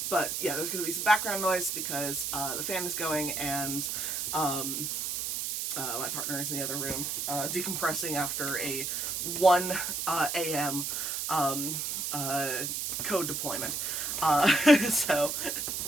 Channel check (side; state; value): right; noise; hiss, 2 dB below the sound